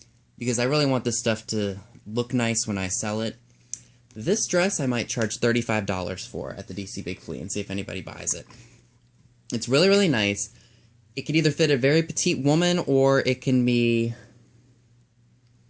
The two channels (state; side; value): identical; both; correlation 1.00